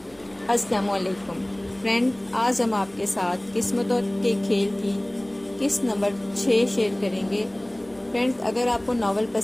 السلام علیکم فرینڈ، آج ہم آپ کے ساتھ قسمتوں کے کھیل کی قسط نمبر 6 شیئر کریں گے۔ فرینڈز، اگر آپ کو ناول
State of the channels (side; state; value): right; noise; rumble, 28 dB below the sound